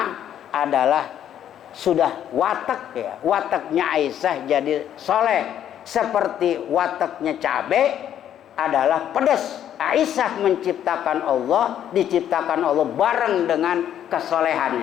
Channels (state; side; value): quieter; right; 10.3 dB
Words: adalah sudah watak ya. Wataknya Aisyah jadi soleh. Seperti wataknya cabai adalah pedas. Aisyah menciptakan Allah, diciptakan Allah bareng dengan